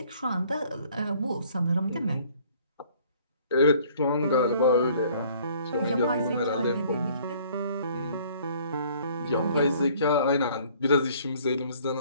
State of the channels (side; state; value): both; inverted; correlation -0.57